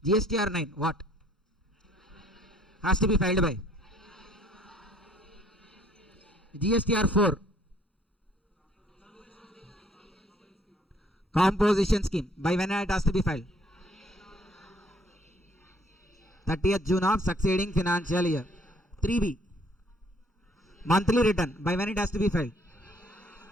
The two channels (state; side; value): normal; both; correlation 0.62